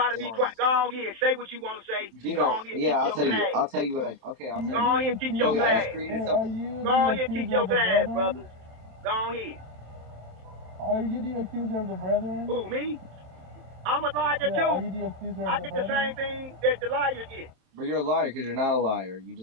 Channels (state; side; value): late; left; 27 ms